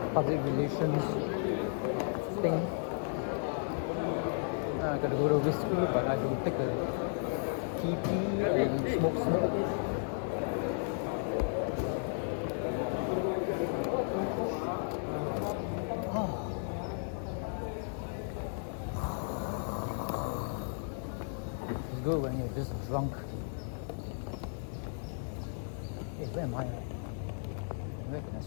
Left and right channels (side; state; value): right; silent; 55 dB below the other